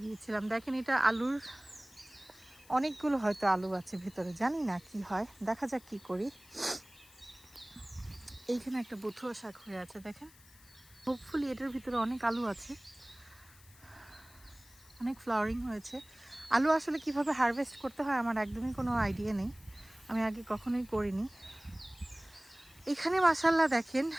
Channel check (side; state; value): left; noise; hiss, 24 dB below the sound